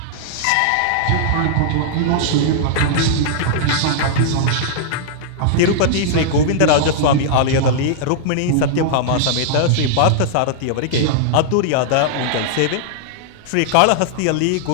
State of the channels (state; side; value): different; both; correlation -0.01